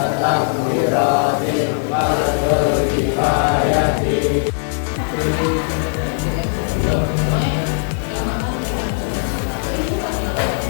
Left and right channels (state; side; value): silent; right; 67 dB below the other